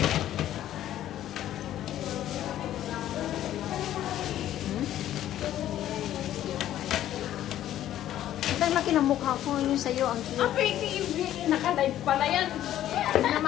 Ang laki ng mukha ko, yung sa'yo, ang cute. Pwede yung naka-live pala yan.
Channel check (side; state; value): right; quieter; 12.3 dB